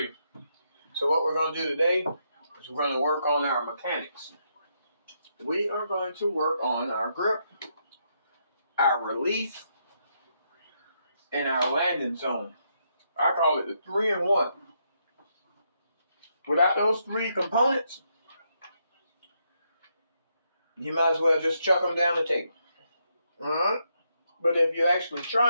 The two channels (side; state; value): both; inverted; correlation -0.78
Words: So what we're going to do today is we're going to work on our mechanics. We are going to work on our grip, our release, and our landing zone. I call it the 3-in-1. Without those three components, you might as well just chuck them down the table. Alright? But if you're actually